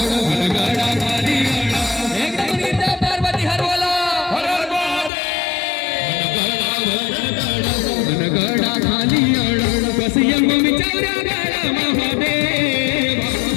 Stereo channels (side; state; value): right; drops out; at 5.1 s